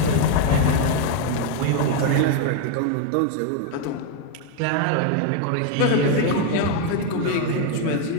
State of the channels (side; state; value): both; different; correlation 0.01